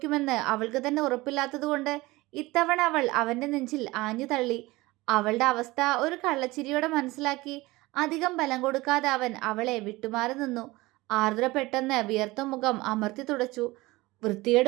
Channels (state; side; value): quieter; left; 20.6 dB